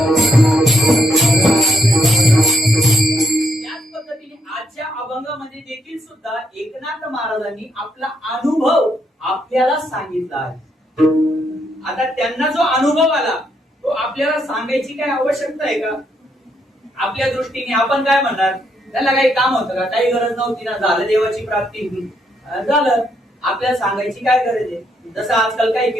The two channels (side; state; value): both; normal; correlation 0.76